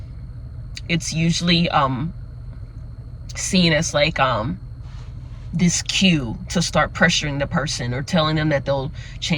it's usually seen as like this cue to start pressuring the person, or telling them that they'll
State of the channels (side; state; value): both; identical; correlation 1.00